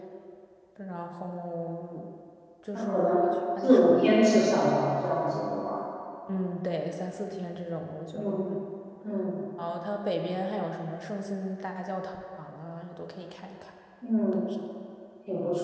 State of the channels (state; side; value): identical; both; correlation 1.00